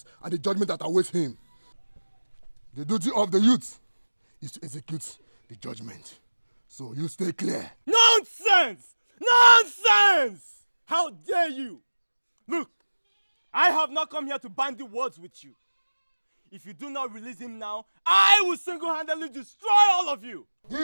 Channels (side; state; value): both; inverted; correlation -1.00